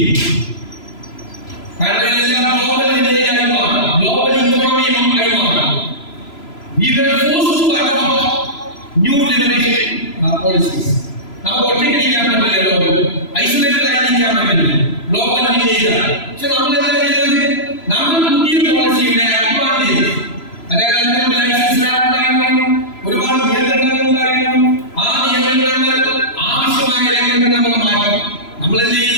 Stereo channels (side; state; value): right; late; 3.0 ms